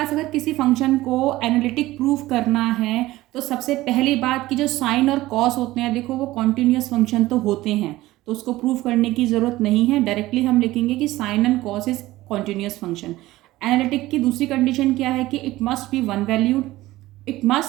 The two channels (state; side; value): quieter; left; 17.3 dB